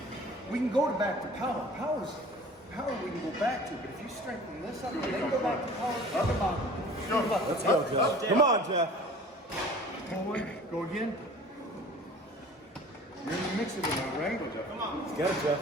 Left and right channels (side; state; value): both; normal; correlation 0.45